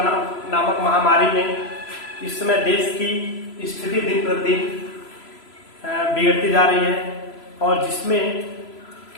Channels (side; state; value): right; late; 3.0 ms